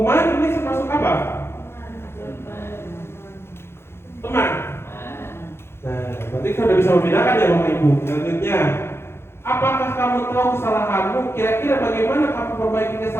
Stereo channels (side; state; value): right; late; 0.12 ms